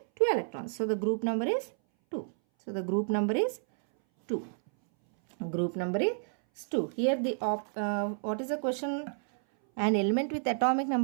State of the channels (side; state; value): left; silent; 58 dB below the other